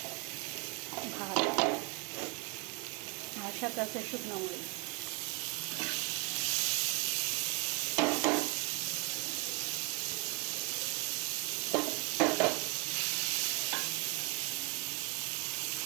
ভাত, আর সাথে আছে শুকনো মরিচ।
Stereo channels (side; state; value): left; quieter; 27.8 dB